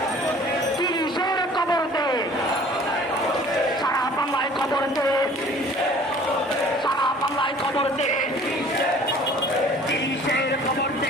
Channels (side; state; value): both; normal; correlation 0.51